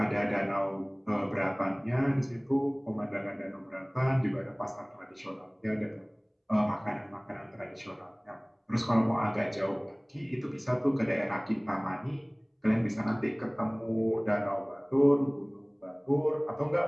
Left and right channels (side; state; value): both; identical; correlation 1.00